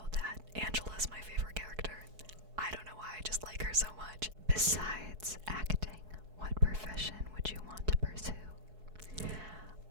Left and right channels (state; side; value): late; left; 4.7 ms